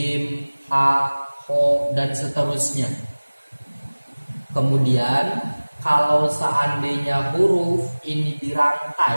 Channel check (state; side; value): inverted; both; correlation -1.00